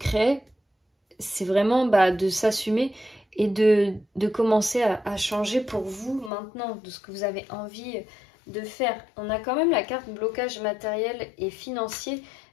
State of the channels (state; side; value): drops out; right; at 6.3 s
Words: C'est vraiment de s'assumer et de commencer à changer pour vous maintenant, de ce que vous avez envie de faire. On a quand même la carte blocage matériel et financier,